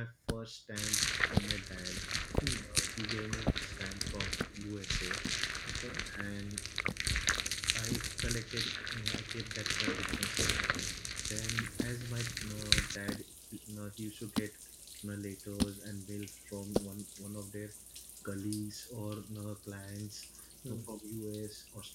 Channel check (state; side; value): identical; both; correlation 1.00